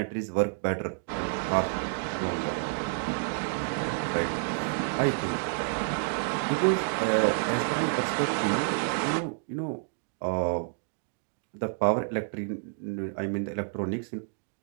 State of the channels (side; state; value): left; silent; 58 dB below the other